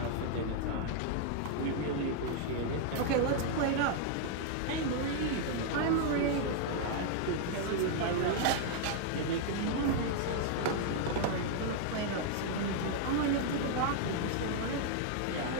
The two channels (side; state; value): both; different; correlation 0.00